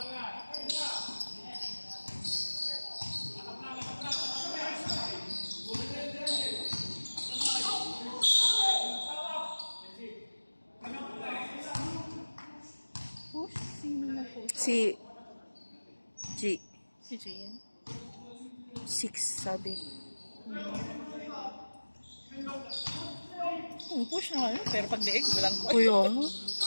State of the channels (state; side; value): inverted; both; correlation -1.00